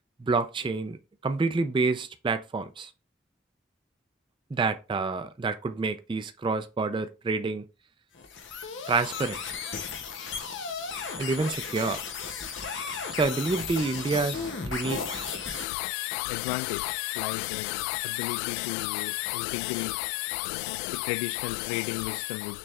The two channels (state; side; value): drops out; right; at 15.7 s